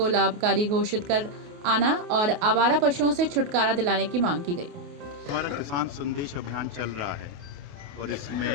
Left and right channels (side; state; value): left; late; 28 ms